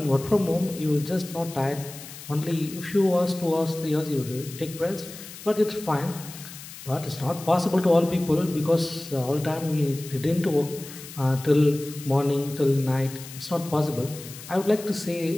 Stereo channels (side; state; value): left; noise; hiss, 14 dB below the sound